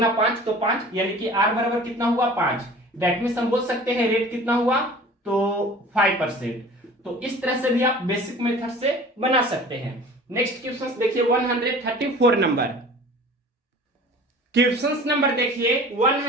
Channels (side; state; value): both; normal; correlation 0.43